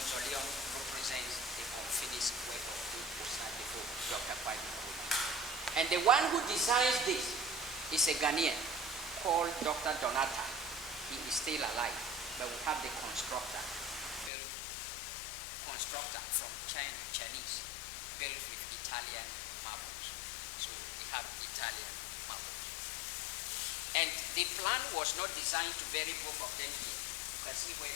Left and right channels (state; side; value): drops out; right; at 14.3 s